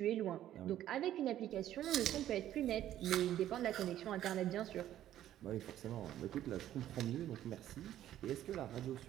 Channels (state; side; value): quieter; left; 12.2 dB